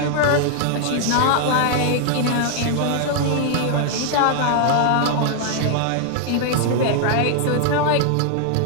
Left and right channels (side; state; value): both; different; correlation 0.00